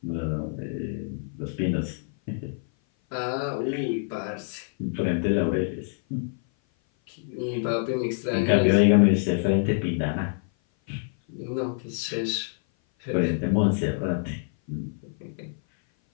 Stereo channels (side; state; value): right; silent; 56 dB below the other